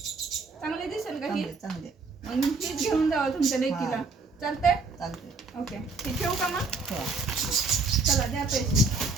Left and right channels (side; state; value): left; quieter; 4.0 dB